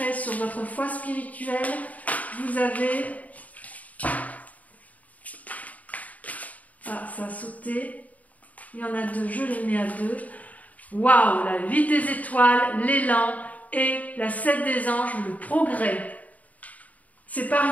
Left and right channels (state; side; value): late; right; 0.072 ms